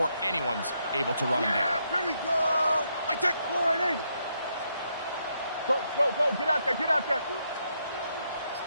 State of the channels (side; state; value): both; inverted; correlation -0.78